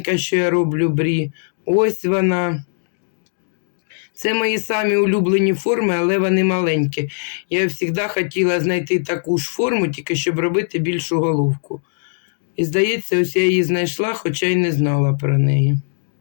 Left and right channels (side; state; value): right; silent; digital silence